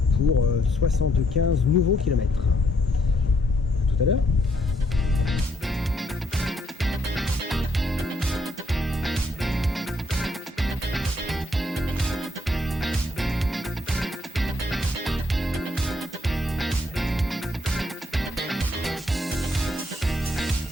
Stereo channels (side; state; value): both; normal; correlation 0.72